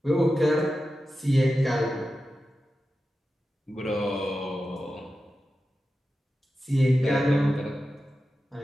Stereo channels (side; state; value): both; normal; correlation 0.92